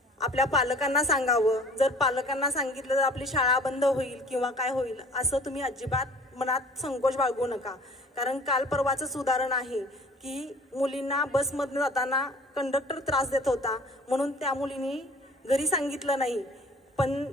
आपल्या पालकांना सांगावं. जर पालकांना सांगितलं तर आपली शाळा बंद होईल किंवा काय होईल असं तुम्ही अजिबात मनात संकोच बाळगू नका. कारण काल परवाचंच उदाहरण आहे की मुलींना बसमधून जाताना कंडक्टर त्रास देत होता म्हणून त्या मुलींनी घरी सांगितलं नाही, पण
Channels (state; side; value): normal; both; correlation 0.48